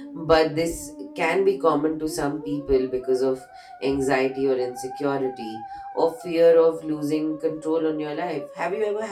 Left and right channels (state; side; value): identical; both; correlation 1.00